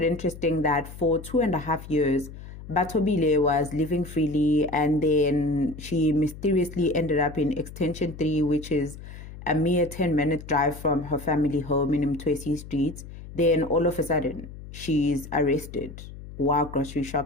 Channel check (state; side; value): noise; left; hum, 14 dB below the sound